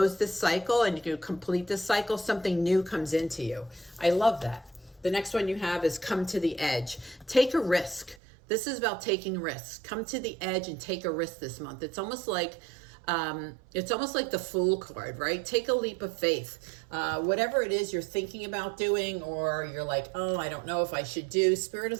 this cycle and you complete this cycle, something new comes into you. I love that. The next one you have is come to the edge. Take a risk. This is about taking risks. Come to the edge and take a risk this month. It's almost like the Fool card, right? Take a leap of faith. Whatever it is you're thinking about doing, or you're like, oh, I don't know if I should do. Spirit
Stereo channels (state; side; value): drops out; left; at 8.2 s